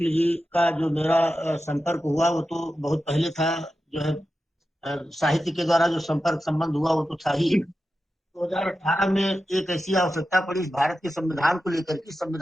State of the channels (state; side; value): normal; both; correlation 0.91